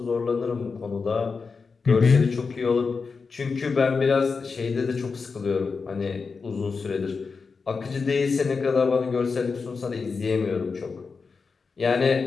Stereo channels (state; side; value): quieter; right; 4.8 dB